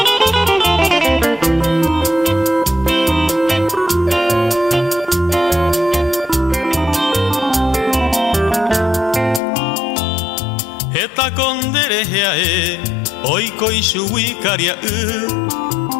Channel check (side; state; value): right; drops out; at 9.4 s